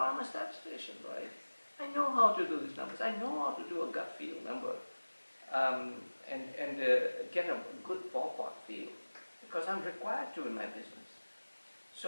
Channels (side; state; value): both; inverted; correlation -1.00